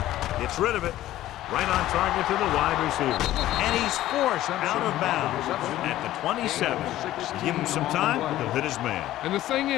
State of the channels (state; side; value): quieter; right; 14.3 dB